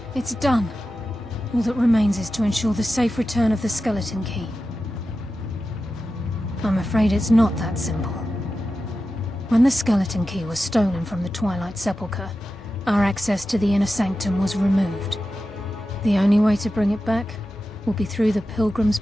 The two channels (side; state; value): both; normal; correlation 0.92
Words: it's done. All that remains is to ensure the safe return of the skeleton key. I'm afraid it's not that simple. When the skeleton key was stolen from the Twilight Sepulchre, our access to the inner sanctum was removed. The only way to bring it back will be through the Pilgrim's